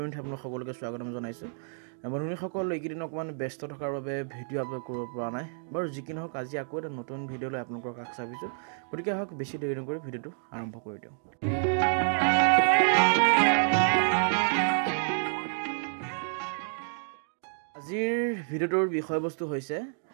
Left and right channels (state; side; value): silent; left; digital silence